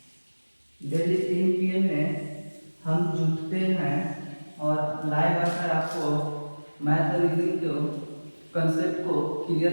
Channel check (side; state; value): both; inverted; correlation -1.00